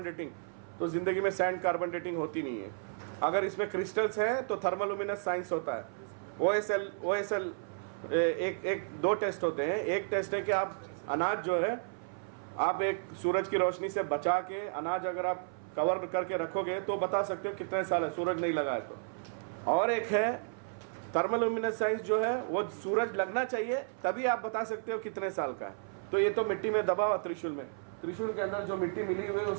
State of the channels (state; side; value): silent; left; 56 dB below the other